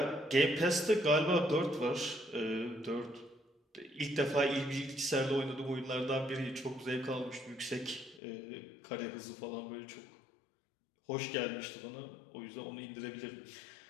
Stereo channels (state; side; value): drops out; right; at 8.2 s